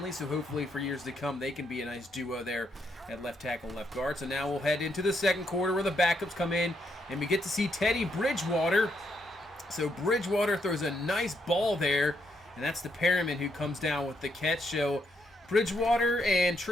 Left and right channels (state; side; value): normal; both; correlation 0.77